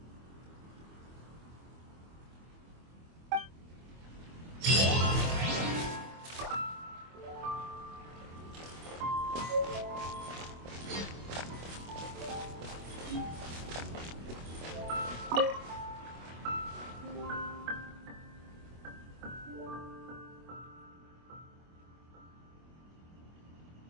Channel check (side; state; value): left; late; 25 ms